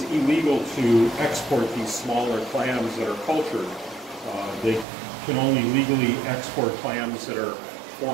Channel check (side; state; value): left; drops out; at 4.9 s